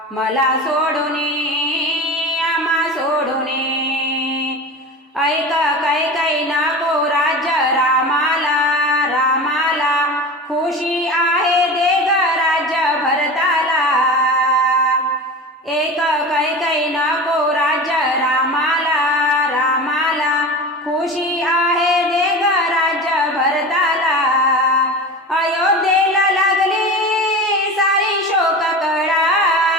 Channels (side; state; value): both; normal; correlation 0.31